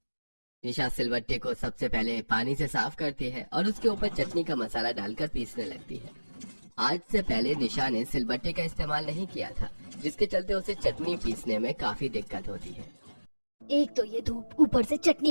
निशा सिलबट्टे को सबसे पहले पानी से साफ करती है और उसके ऊपर चटनी का मसाला डालकर पीसने लगती है। आज से पहले निशा ने सिलबट्टे का इस्तेमाल नहीं किया था, जिसके चलते उसे चटनी पीसने में काफी दिक्कत होती है। एक तो ये धूप, ऊपर से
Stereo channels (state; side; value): inverted; both; correlation -1.00